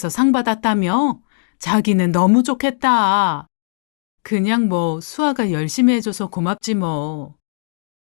상 받았다며? 자기는 너무 좋겠다. 그냥 수아가 열심히 해줘서 고맙지 뭐.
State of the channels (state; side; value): silent; right; digital silence